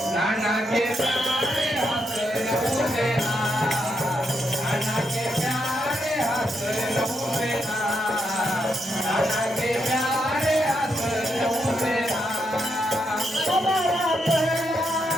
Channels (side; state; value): both; normal; correlation 0.81